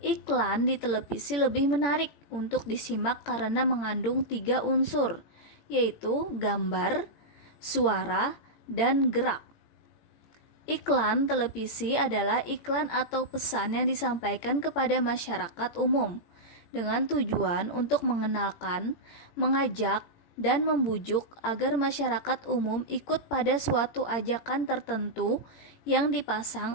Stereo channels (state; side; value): late; right; 17 ms